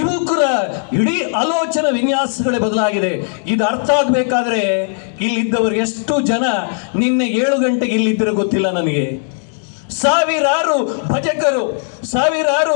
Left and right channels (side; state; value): right; silent; 64 dB below the other